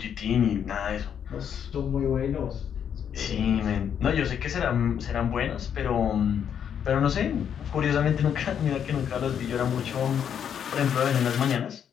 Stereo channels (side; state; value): right; quieter; 8.4 dB